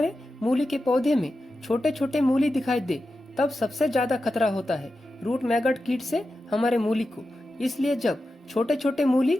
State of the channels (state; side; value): normal; both; correlation 0.91